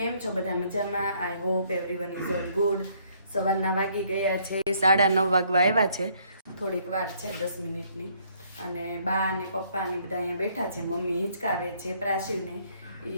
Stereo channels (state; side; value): inverted; both; correlation -0.66